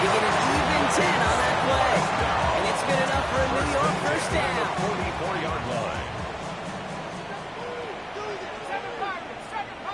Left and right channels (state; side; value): identical; both; correlation 1.00